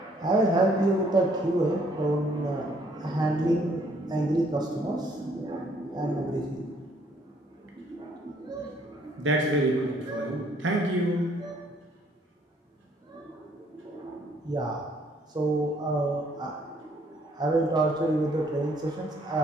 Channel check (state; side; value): normal; both; correlation 0.64